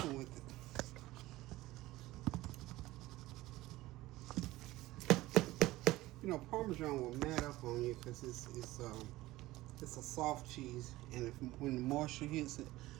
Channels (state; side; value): quieter; left; 17.7 dB